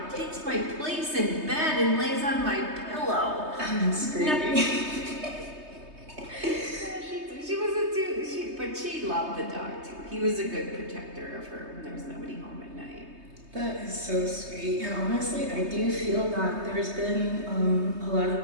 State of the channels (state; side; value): late; left; 3.2 ms